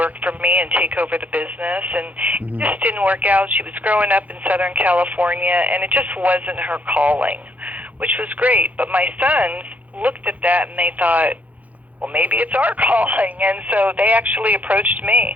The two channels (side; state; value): left; late; 0.075 ms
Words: for me and take over the business, and it just didn't work out. She was growing up in Southern California, and it just wasn't her calling, which was great. But my sons looked at that and they thought, well, maybe it's our calling, and so they actually approached me,